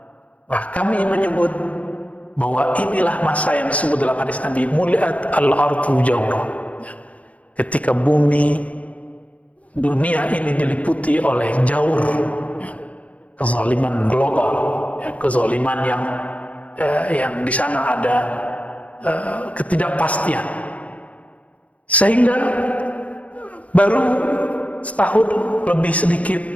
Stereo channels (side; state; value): right; late; 0.067 ms